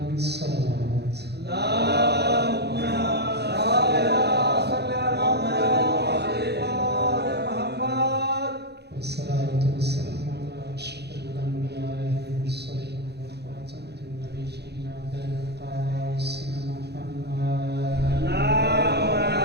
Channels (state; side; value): late; left; 0.48 ms